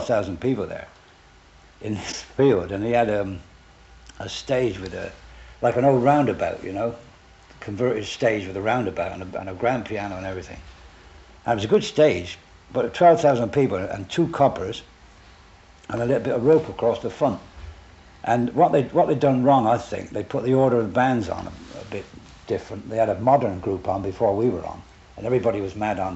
people there in this field, and he had a stage with like an old roundabout, you know, converted stage with a roundabout and a grand piano and everything. And it was a good stage, but 12,000 people and 2 coppers and a little bit of rope across the front. And what they'd done wrong, I think, they put the order of the bands on a bit different. They had a modern group on before we were on, and everybody was mad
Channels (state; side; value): identical; both; correlation 1.00